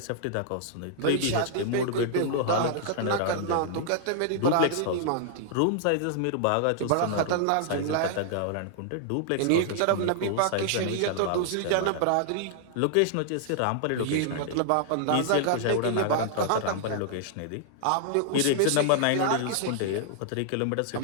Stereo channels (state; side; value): different; both; correlation 0.00